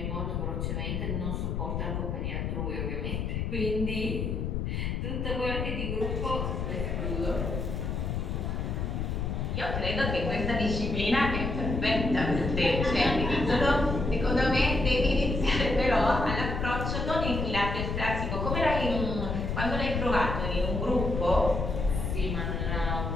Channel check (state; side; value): noise; left; rumble, 2 dB below the sound